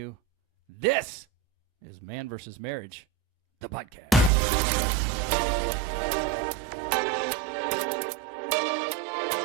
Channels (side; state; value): left; drops out; at 4.3 s